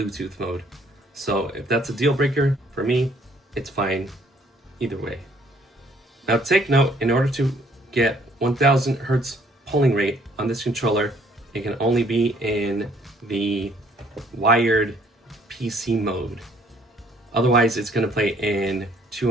mode. So if that's a deal breaker, for me, it's fine either way. Now take note, in order to get 1000 Hertz polling rate on this controller, it can only be in the wired PC mode. Otherwise, it's going to play in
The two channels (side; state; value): both; normal; correlation 0.62